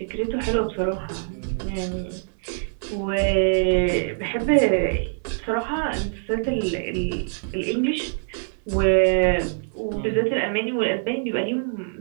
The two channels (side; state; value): left; silent; digital silence